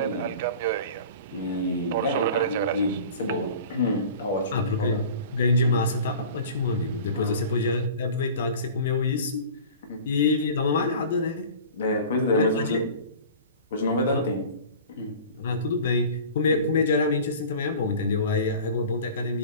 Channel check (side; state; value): both; inverted; correlation -0.41